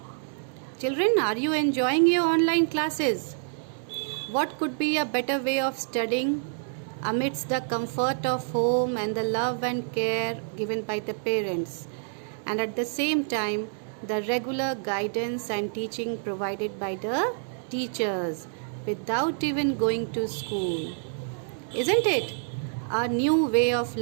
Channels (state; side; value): silent; left; digital silence